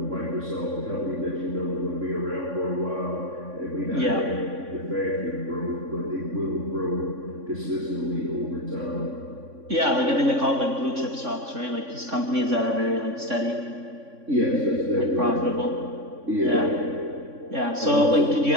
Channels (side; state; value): left; late; 3.6 ms